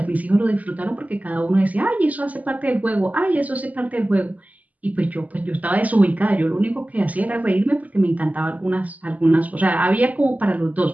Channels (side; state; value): left; late; 0.075 ms